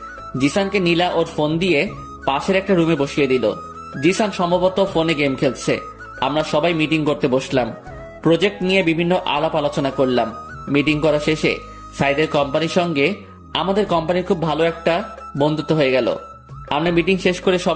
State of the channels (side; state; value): both; identical; correlation 1.00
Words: জিসানকে নীলা ওর ফোন দিয়ে পাশের একটা রুমে বসিয়ে দিল। জিসান সম্ভবত ফোনে গেম খেলছে। আমরা সবাই মিটিং করতে বসলাম। প্রজেক্ট নিয়ে বিভিন্ন আলাপ আলোচনা করলাম। মিটিং করা শেষে সাইদের কোম্পানির সঙ্গে আমাদের কোম্পানির খুব ভালো একটা বন্ধুত্ব হয়ে গেল। আমরা মিটিং শেষ করে